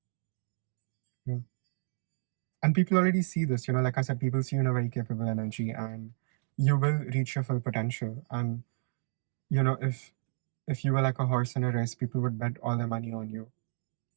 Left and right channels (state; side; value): silent; left; digital silence